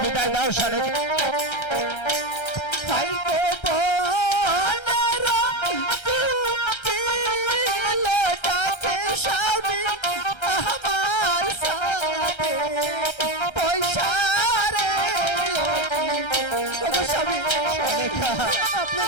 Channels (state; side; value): late; right; 1.3 ms